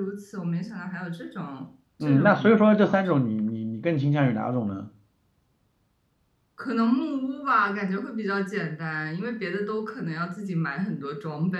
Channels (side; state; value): both; identical; correlation 1.00